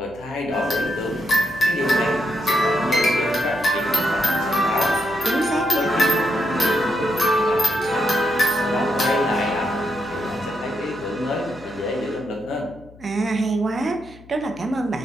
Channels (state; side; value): noise; left; hum, 23 dB below the sound